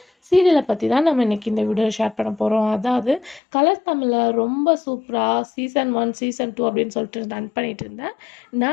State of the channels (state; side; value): drops out; right; at 3.4 s